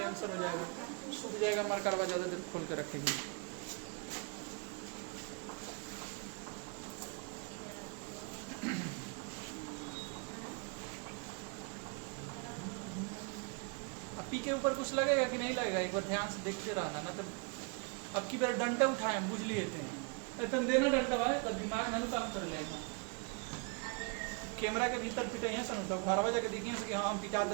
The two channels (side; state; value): left; quieter; 34.3 dB